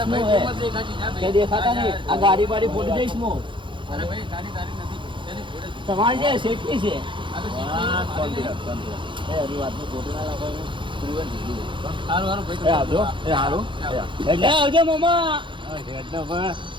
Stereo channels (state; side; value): late; left; 0.24 ms